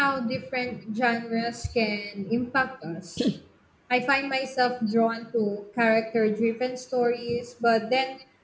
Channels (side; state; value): both; identical; correlation 1.00